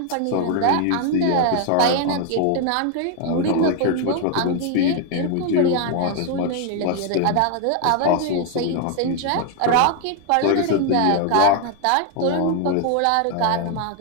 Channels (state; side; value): different; both; correlation 0.01